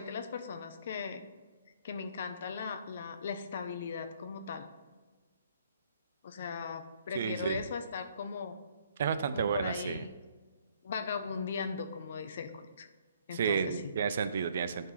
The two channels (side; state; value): both; inverted; correlation -0.64